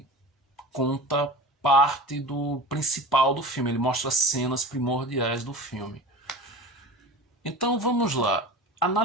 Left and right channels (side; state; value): both; normal; correlation 0.35